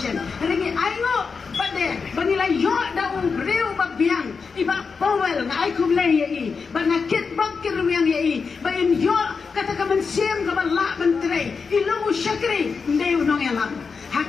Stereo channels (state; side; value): quieter; right; 5.2 dB